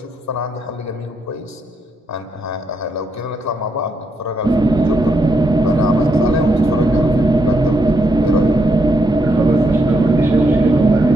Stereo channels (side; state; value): both; normal; correlation 0.79